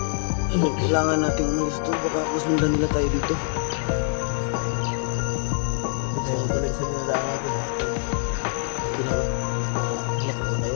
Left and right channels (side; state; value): right; silent; digital silence